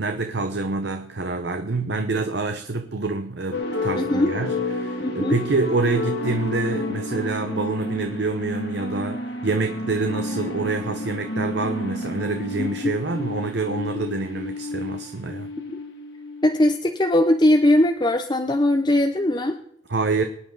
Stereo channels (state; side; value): normal; both; correlation 0.54